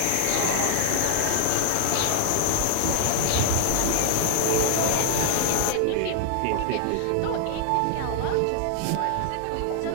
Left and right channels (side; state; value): both; different; correlation 0.00